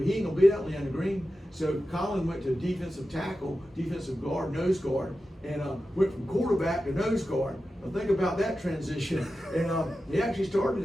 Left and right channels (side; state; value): both; normal; correlation 0.92